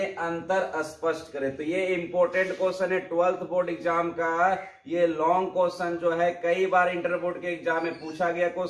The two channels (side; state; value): both; identical; correlation 1.00